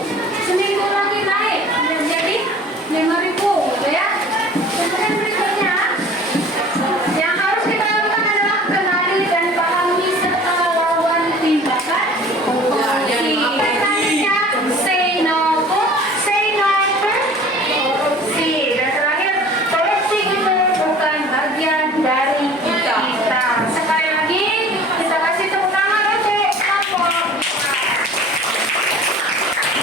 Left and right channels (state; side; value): normal; both; correlation 0.45